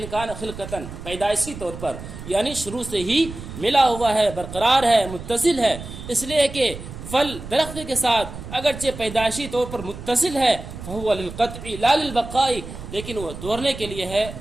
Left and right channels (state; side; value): noise; right; rumble, 11 dB below the sound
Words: كَانَ خِلْقَةً پیدائشی طور پر یعنی شروع سے ہی ملا ہوا ہے، برقرار ہے، متصل ہے. اس لیے کہ پھل درخت کے ساتھ اگرچہ پیدائشی طور پر متصل ہے، فَهُوَ لِلْقَطْعِ لَا لِلْبَقَاءِ، لیکن وہ توڑنے کے لیے ہے،